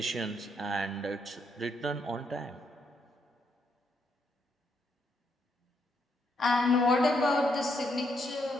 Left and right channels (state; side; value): normal; both; correlation 0.77